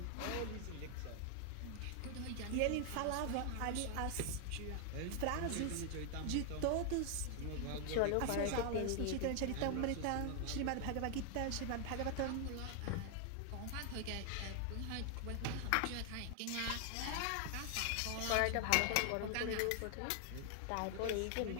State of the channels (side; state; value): both; different; correlation 0.00